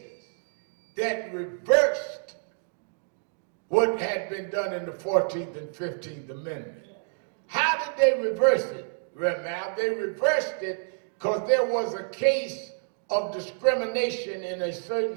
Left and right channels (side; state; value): left; silent; digital silence